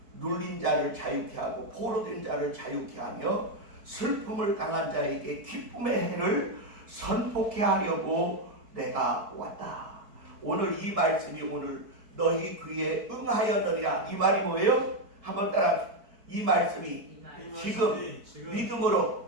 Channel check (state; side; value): late; left; 4.6 ms